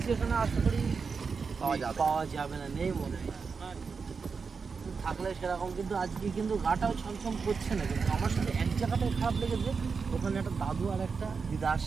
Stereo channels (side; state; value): left; quieter; 5.2 dB